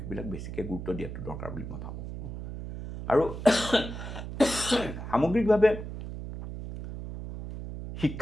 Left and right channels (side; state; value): right; noise; hum, 8 dB below the sound